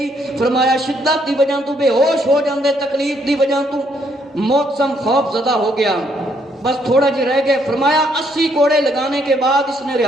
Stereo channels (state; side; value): normal; both; correlation 0.71